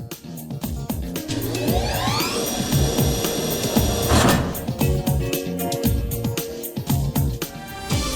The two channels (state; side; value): identical; both; correlation 1.00